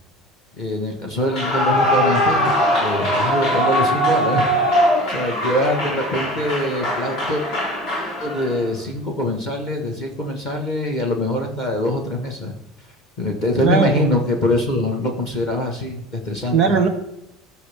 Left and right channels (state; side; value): normal; both; correlation 0.37